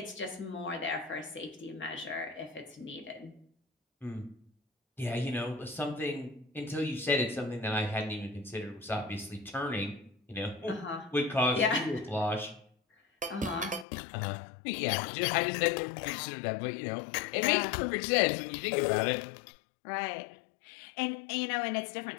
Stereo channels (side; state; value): right; drops out; at 13.9 s